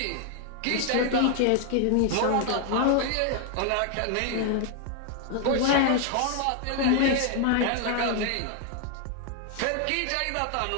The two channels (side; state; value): both; different; correlation 0.00